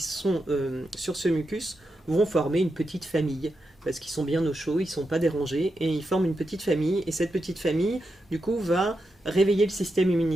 sur ce mucus vont former une petite famille. Parce qu'ils sont bien au chaud, ils ne sont pas dérangés, et ils forment une petite famille. Et cette petite famille, du coup, va réveiller le système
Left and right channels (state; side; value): normal; both; correlation 0.87